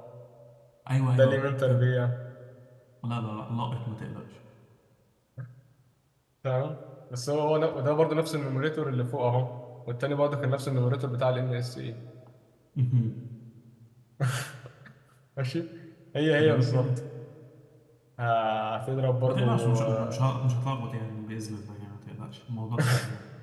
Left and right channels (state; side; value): identical; both; correlation 1.00